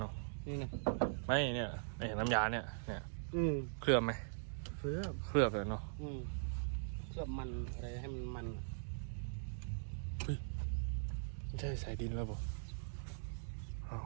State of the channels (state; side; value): silent; left; digital silence